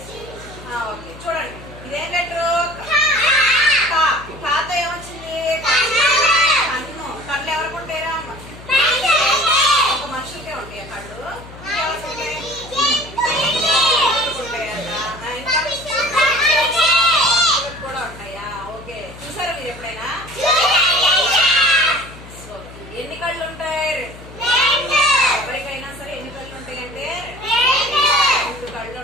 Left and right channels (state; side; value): noise; left; hum, 17 dB below the sound